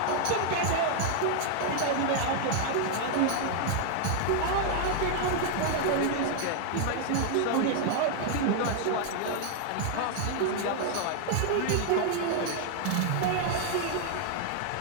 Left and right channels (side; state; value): both; different; correlation 0.00